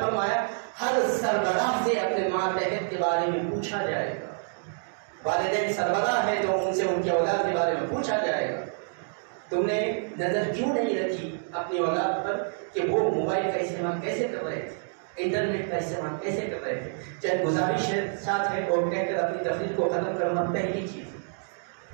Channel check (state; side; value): silent; left; digital silence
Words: فرمایا ہر سربراہ سے اپنے ماتحت کے بارے میں پوچھا جائے گا۔ والدین سربراہ ہے تو ان سے ان کی اولاد کے بارے میں پوچھا جائے گا۔ تم نے نظر کیوں نہیں رکھی اپنی اولاد پر کہ وہ موبائل کا استعمال کیسے کر رہے تھے، انٹرنیٹ کا استعمال کیسے کر رہے تھے؟ چاہے گزارش ساتھ ہے اور کہہ کر اپنی تفریح کو ختم کرنا پہلی چیز۔